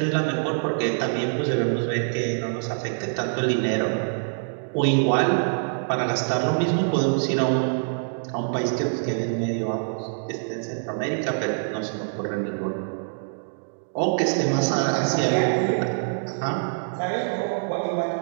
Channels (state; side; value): silent; left; digital silence